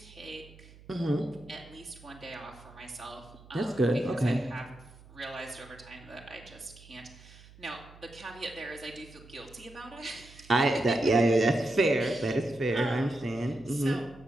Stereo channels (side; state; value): right; noise; hum, 21 dB below the sound